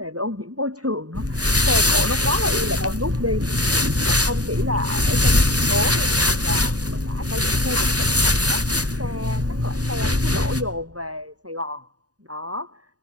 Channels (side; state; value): left; late; 0.68 ms